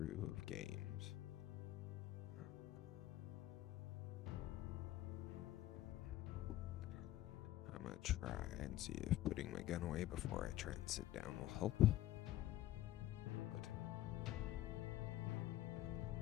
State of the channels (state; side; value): quieter; right; 14.2 dB